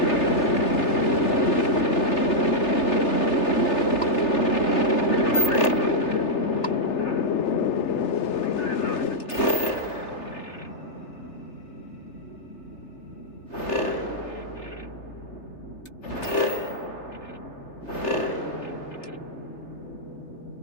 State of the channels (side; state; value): right; late; 3.3 ms